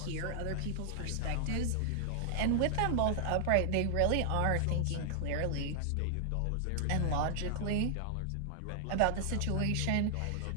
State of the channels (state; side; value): different; both; correlation -0.01